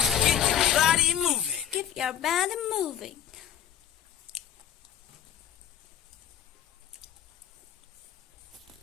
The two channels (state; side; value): quieter; right; 10.3 dB